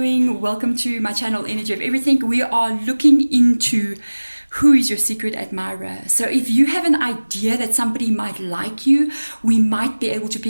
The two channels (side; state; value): both; inverted; correlation -1.00